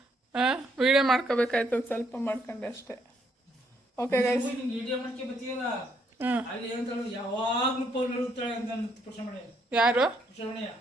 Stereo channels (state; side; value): normal; both; correlation 0.72